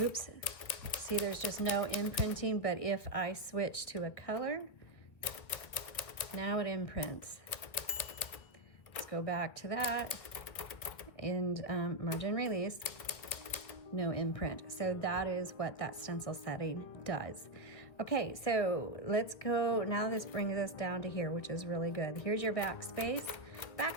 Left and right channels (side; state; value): right; late; 2.2 ms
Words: See, there's just no imprinting, but if I switch to a color, now it imprints. Let's go back to that, and margin release, no imprint. So that is what that stencil setting does. Okay, so let's go, now this brings us down to here, which is really good. Here's your backspace.